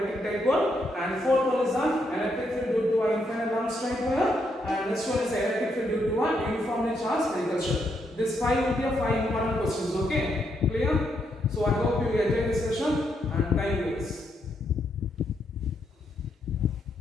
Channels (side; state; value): both; normal; correlation 0.78